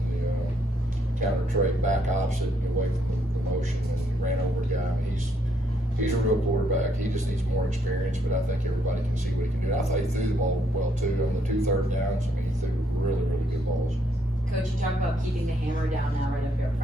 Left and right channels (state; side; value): normal; both; correlation 0.72